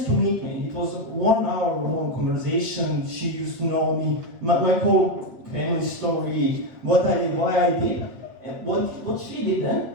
to meet me. It was a 1 hour long conversation. She used to know me, my whole family story, what I did, why I did. And what she did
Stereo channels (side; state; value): left; late; 8.5 ms